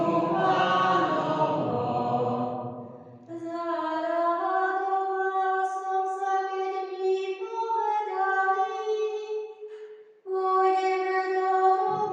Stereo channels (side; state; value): both; identical; correlation 1.00